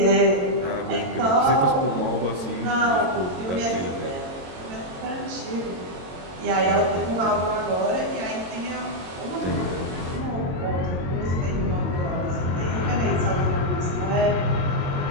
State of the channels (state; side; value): late; left; 22 ms